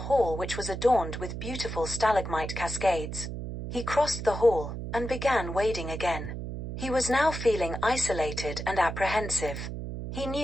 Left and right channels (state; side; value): noise; right; hum, 6 dB below the sound